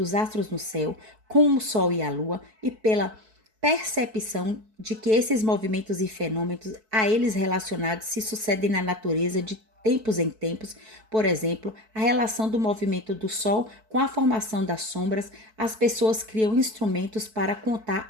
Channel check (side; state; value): left; late; 4.6 ms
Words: astros no céu, com o Sol e a Lua, e pela percepção de que esses movimentos e fenômenos a eles relacionados se sucedem na natureza de tempos em tempos, por exemplo, a relação do movimento do Sol com a formação das sombras, as pessoas criam instrumentos para contar